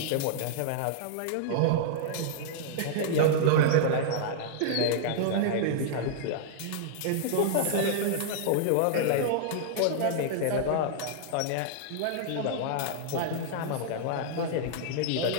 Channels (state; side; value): different; both; correlation -0.01